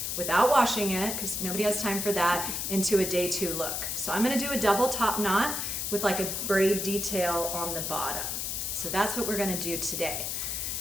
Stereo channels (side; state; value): left; noise; hiss, 2 dB below the sound